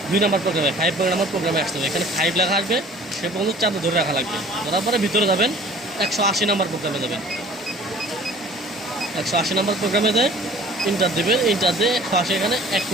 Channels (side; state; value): both; normal; correlation 0.48